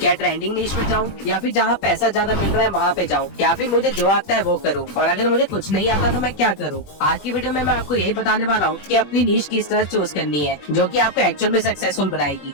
ट्रेंडिंग नीश में जाऊँ या फिर जहाँ पैसा ज्यादा मिल रहा है वहाँ पे जाऊँ, या फिर मुझे जो आता है वो करूँ, और अगर मुझे कुछ नहीं आता तो मैं क्या करूँ। आज की वीडियो में मैं आपको यही बताने वाला हूँ कि अपनी नीश किस तरह चूज करनी है जो कि आपको एक्चुअल में सक्सेसफुल बनाएगी।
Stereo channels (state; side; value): late; right; 21 ms